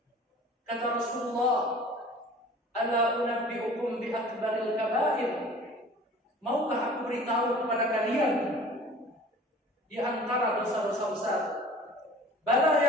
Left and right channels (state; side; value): normal; both; correlation 0.45